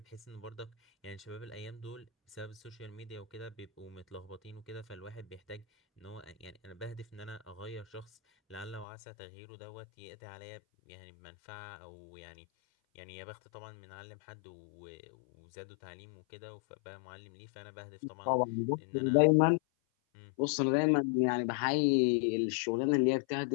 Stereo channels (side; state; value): right; drops out; at 8.8 s